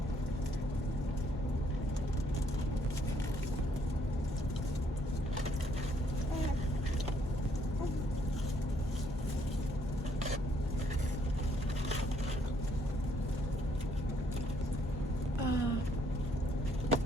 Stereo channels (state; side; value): normal; both; correlation 0.68